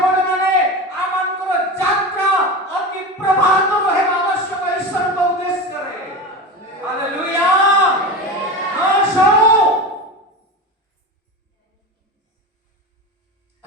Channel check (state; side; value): normal; both; correlation 0.26